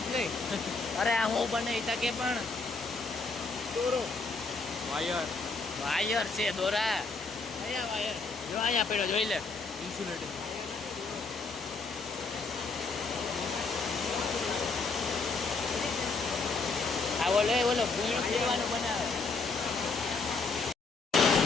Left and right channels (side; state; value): right; quieter; 4.1 dB